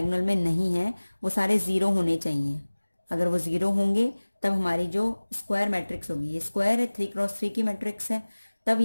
में नहीं है वो सारे जीरो होने चाहिए। अगर वो जीरो होंगे तब हमारी जो स्क्वायर मैट्रिक्स होगी, ये स्क्वायर है, 3x3 की मैट्रिक्स है, तब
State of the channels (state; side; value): inverted; both; correlation -1.00